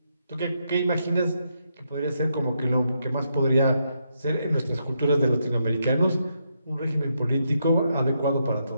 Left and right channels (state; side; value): inverted; both; correlation -0.80